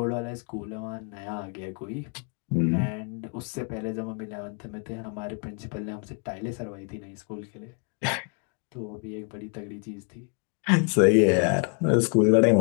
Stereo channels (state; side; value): quieter; right; 39.0 dB